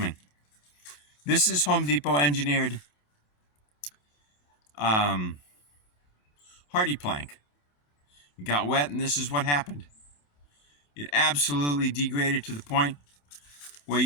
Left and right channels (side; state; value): right; late; 28 ms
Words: This is Home Depot engineered hardy plank. It got wet and this is what happened. It absolutely degraded to the point where